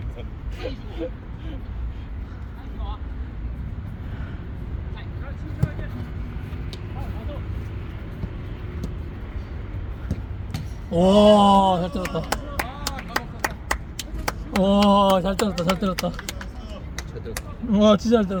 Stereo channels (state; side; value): identical; both; correlation 1.00